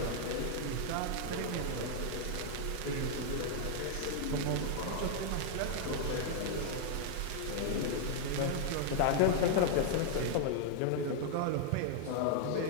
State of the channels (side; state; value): both; different; correlation -0.01